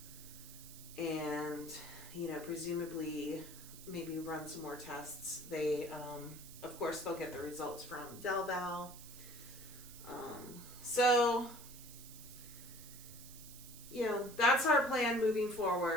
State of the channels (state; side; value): noise; right; hiss, 15 dB below the sound